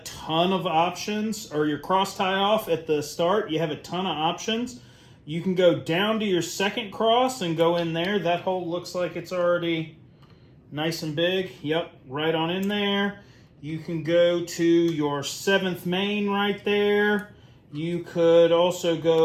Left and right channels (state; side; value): identical; both; correlation 1.00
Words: ton of options, or your cross tie-off at the start, you have a ton of options. You can go down to your second cross and go in there. That hole looks like it's already nice and big. Yep, right on in there. You can go to your 7th main right there. You could also